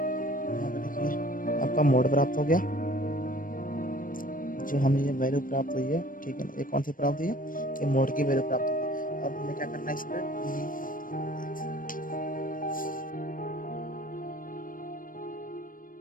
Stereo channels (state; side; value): late; right; 0.40 ms